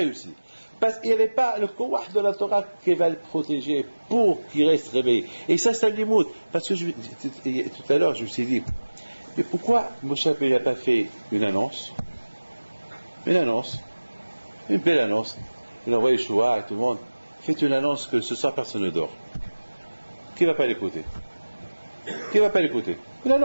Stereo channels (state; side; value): inverted; both; correlation -1.00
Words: Parce qu'il n'y avait pas le Kourah de la Torah qui va le protéger pour qu'il reste réveillé. Et ça, c'est un limoud. Parce que tout à l'heure, je me suis dit, mais pourquoi Moshe Rabbeinu n'a pas fait une annonce? Une annonce. Une belle annonce. Il a envoyé Yeshua à tout le monde. Faites une annonce que ce soir personne ne dort. Qui ne va pas l'écouter? Qui ne va pas l'écouter? Une